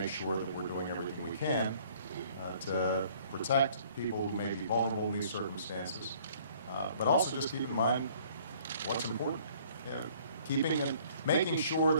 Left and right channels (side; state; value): both; inverted; correlation -0.57